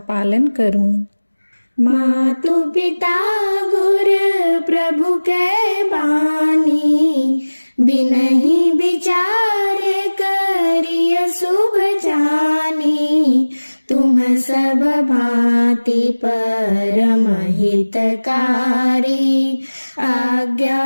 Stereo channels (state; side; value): inverted; both; correlation -1.00